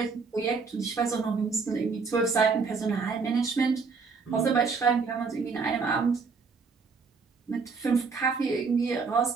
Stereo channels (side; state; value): left; quieter; 4.9 dB